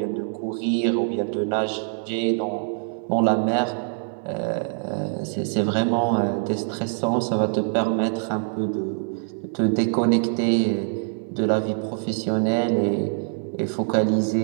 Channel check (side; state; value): left; silent; 62 dB below the other